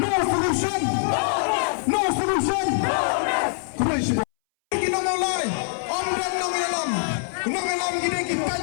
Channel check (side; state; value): right; silent; 61 dB below the other